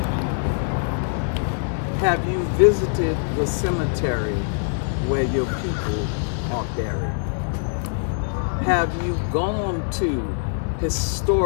Have you visited the cemetery where your people are buried? Have you gone to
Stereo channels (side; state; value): right; silent; digital silence